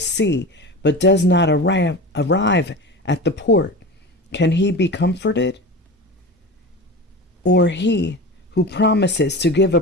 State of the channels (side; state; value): both; normal; correlation 0.30